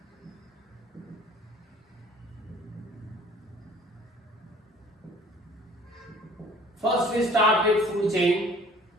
First we start with food chain.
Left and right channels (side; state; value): both; normal; correlation 0.51